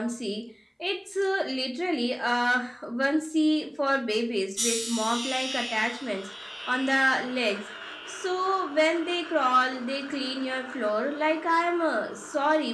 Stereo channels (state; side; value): identical; both; correlation 1.00